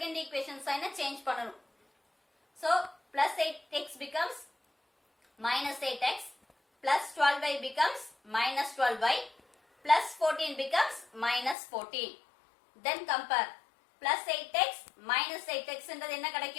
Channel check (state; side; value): drops out; right; at 11.6 s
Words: ஈக்குவேஷன் சைனை சேஞ்ச் பண்ணனும். So plus 8x becomes minus 8x plus 12y becomes minus 12y plus 14 becomes minus 14. Then compare plus 8x minus 8x என்றது என்ன